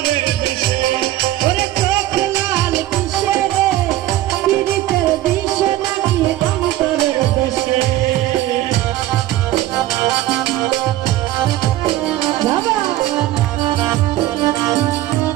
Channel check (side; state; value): left; quieter; 14.8 dB